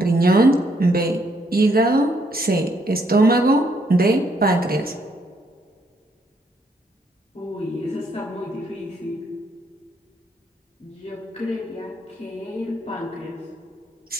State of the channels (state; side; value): normal; both; correlation 0.72